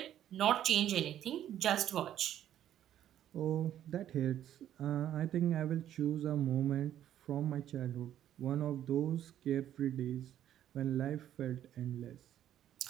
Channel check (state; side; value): quieter; left; 11.2 dB